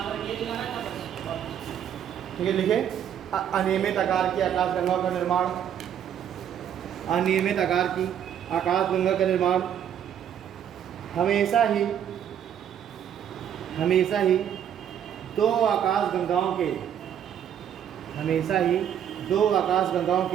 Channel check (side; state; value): left; quieter; 9.4 dB